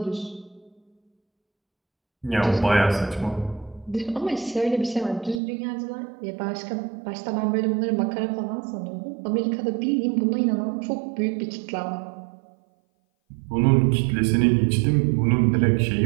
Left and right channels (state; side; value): drops out; left; at 5.4 s